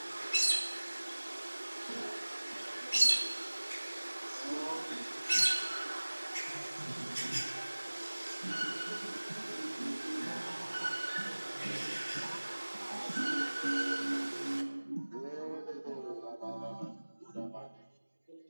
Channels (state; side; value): inverted; both; correlation -1.00